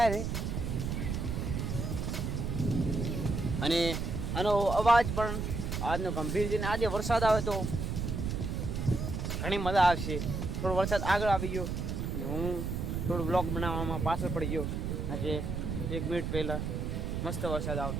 છે. અને આનો અવાજ પણ આજનો ગંભીર છે. આજે વરસાદ આવે તો ઘણી મજા આવશે. થોડો વરસાદ આગળ આવી ગયો અને હું થોડું બ્લોગ બનાવવામાં પાછળ પડી ગયો. આજે 1 મિનિટ પહેલાં મસ્ત વરસાદ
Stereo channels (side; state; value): right; noise; rumble, 2 dB below the sound